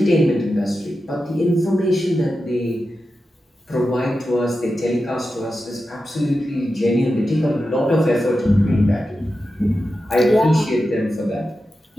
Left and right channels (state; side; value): normal; both; correlation 0.91